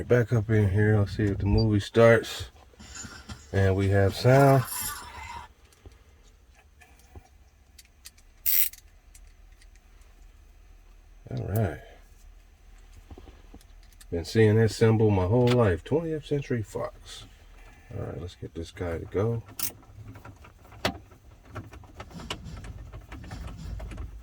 back up in here. Let's see if the movie starts. And we have sound. All right. Been seeing this symbol my whole life. 20th Century Fox. All right, let's get this guy to go.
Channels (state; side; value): identical; both; correlation 1.00